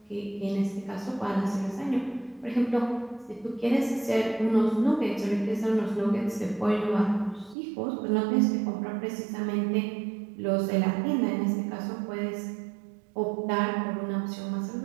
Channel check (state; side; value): drops out; left; at 7.6 s